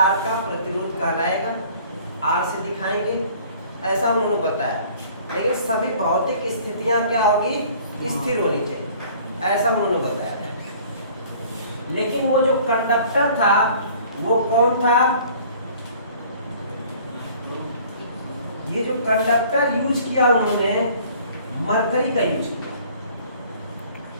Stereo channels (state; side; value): inverted; both; correlation -0.52